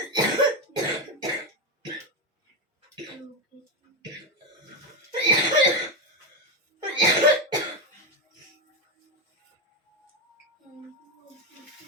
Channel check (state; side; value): normal; both; correlation 0.10